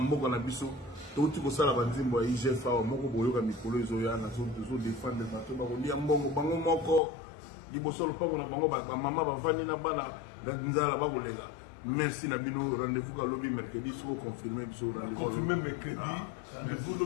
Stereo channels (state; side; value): drops out; right; at 7.0 s